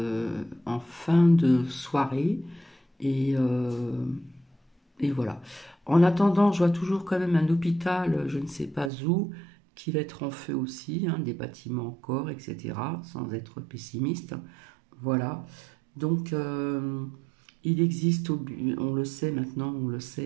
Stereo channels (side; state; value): left; drops out; at 8.9 s